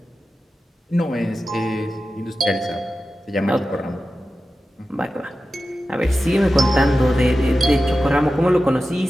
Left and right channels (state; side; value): normal; both; correlation 0.93